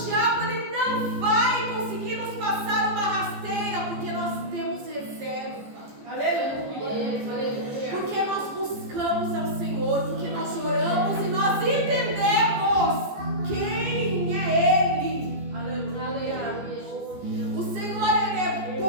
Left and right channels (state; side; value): late; left; 14 ms